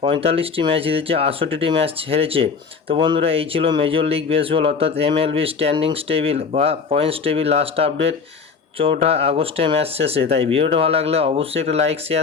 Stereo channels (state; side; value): quieter; right; 5.4 dB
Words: 45টি ম্যাচ জিতেছে, 68টি ম্যাচ হেরেছে। তো বন্ধুরা, এই ছিল মেজর লিগ বেসবল অর্থাৎ এমএলবি স্ট্যান্ডিংস টেবিল বা পয়েন্টস টেবিল লাস্ট আপডেট 4 আগস্টের ম্যাচ শেষে। তাই ভিডিওটা ভালো লাগলে অবশ্যই একটা লাইক